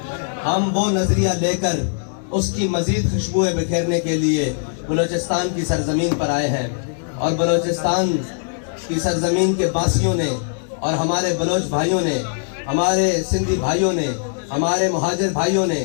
ہم وہ نظریہ لے کر اس کی مزید خوشبوئیں بکھیرنے کے لیے بلوچستان کی سرزمین پر آئے ہیں. اور بلوچستان کی سرزمین کے باسیوں نے اور ہمارے بلوچ بھائیوں نے، ہمارے سندھی بھائیوں نے، ہمارے مہاجر بھائیوں نے،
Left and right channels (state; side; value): silent; right; digital silence